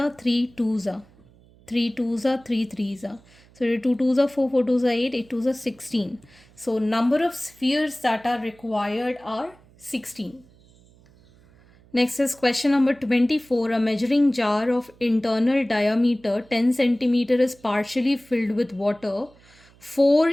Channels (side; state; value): right; noise; hum, 28 dB below the sound